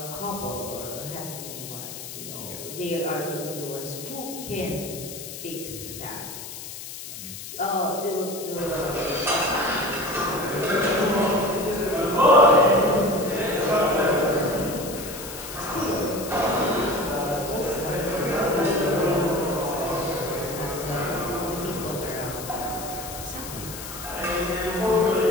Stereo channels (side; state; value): left; noise; hiss, 10 dB below the sound